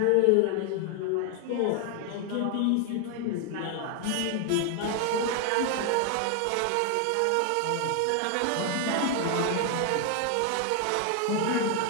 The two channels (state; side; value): different; both; correlation 0.00